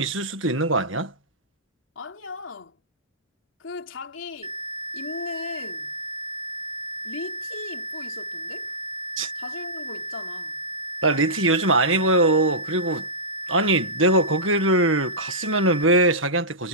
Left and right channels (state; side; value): normal; both; correlation -0.18